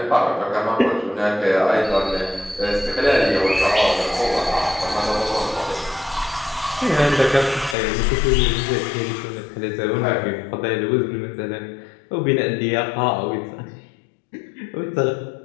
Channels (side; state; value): right; drops out; at 7.8 s